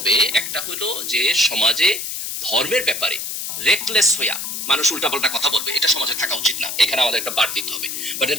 একটা হলো যে সমাজে ধর্মের ব্যাপারে রেকলেস হইয়া, মানুষ উল্টাপাল্টা কথা বলবে, এটা সমাজে থাকা উচিত না। এখানে আমাদের একটা বার দিতে হবে, but at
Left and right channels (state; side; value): noise; left; hiss, 5 dB below the sound